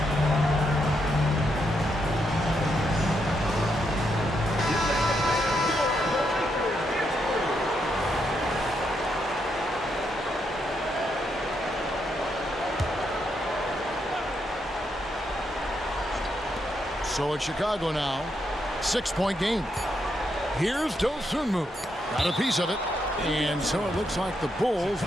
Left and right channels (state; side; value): normal; both; correlation 0.80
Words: So it's Chicago now. 6-point game. Here's Dosunmu. Got a piece of it. And so it looks like the Bulls